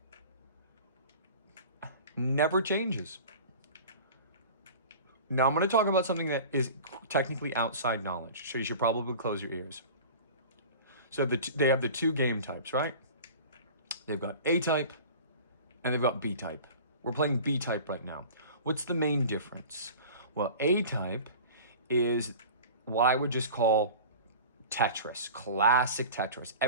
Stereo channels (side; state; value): both; inverted; correlation -0.38